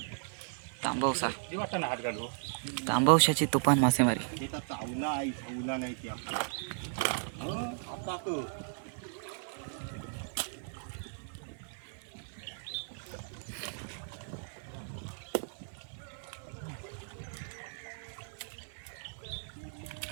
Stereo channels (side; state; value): left; silent; digital silence